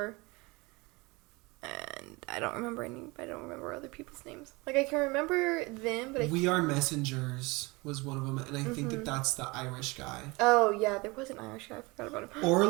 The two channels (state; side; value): quieter; left; 25.0 dB